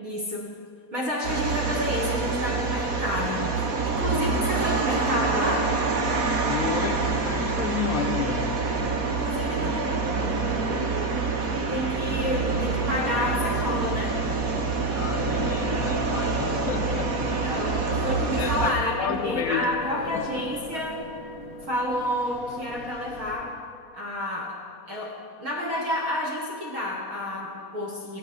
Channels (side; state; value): left; late; 4.2 ms